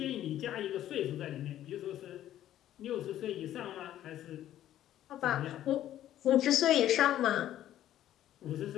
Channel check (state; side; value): quieter; right; 12.3 dB